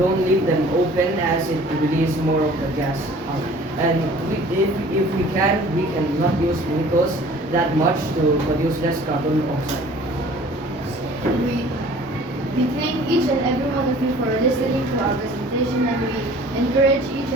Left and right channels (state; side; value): normal; both; correlation 0.49